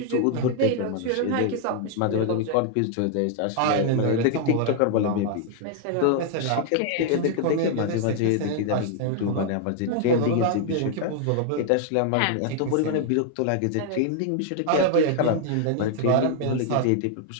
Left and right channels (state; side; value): different; both; correlation 0.00